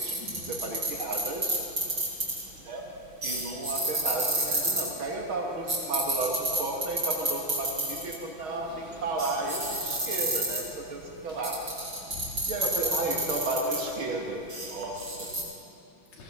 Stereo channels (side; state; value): left; late; 6.1 ms